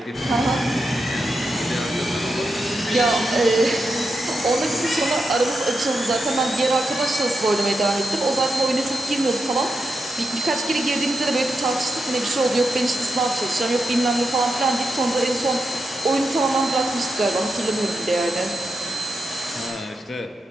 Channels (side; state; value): both; normal; correlation 0.87